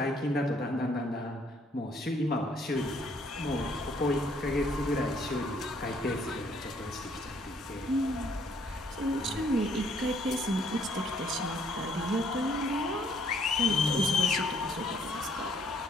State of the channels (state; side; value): normal; both; correlation 0.65